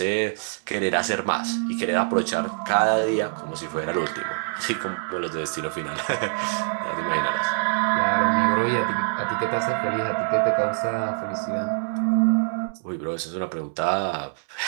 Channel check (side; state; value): left; silent; 62 dB below the other